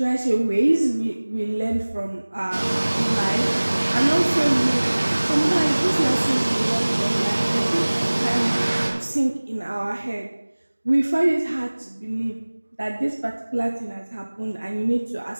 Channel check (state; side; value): inverted; both; correlation -1.00